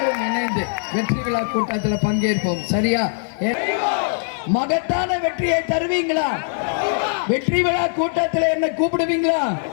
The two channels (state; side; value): silent; right; digital silence